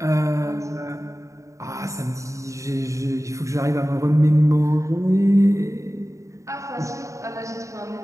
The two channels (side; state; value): left; late; 0.15 ms